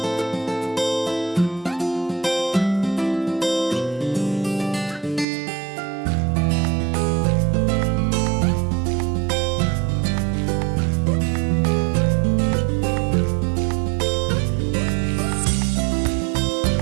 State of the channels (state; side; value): drops out; left; at 5.2 s